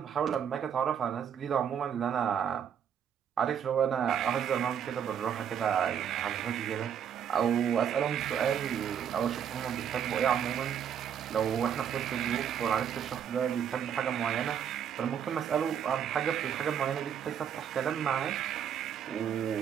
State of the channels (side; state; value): left; quieter; 8.5 dB